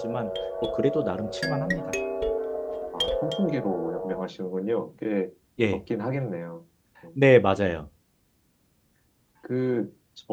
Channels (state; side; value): identical; both; correlation 1.00